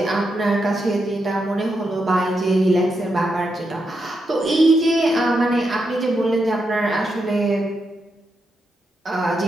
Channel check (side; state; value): both; normal; correlation 0.84